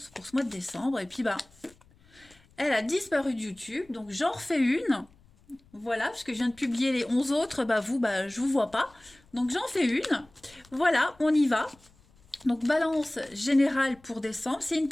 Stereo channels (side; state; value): left; noise; rumble, 29 dB below the sound